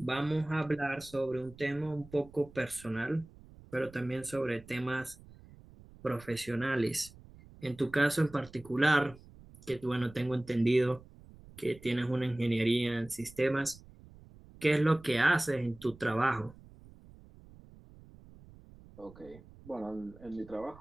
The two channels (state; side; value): noise; right; rumble, 21 dB below the sound